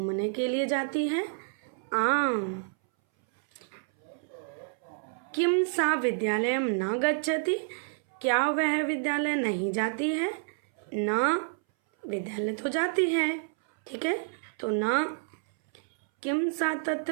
के लिए जाती है? आम। किम सा विद्यालयम न गच्छति, क्या वह विद्यालय नहीं जाती है? न, विद्यालय तो जाती है, ठीक है, तो न। किम सा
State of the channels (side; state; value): left; silent; 59 dB below the other